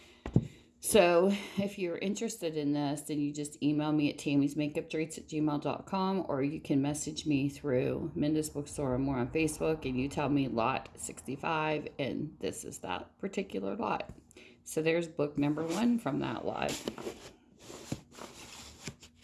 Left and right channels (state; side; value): identical; both; correlation 1.00